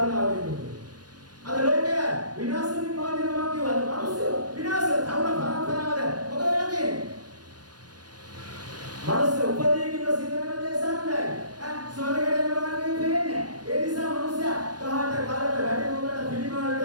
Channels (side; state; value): left; late; 0.69 ms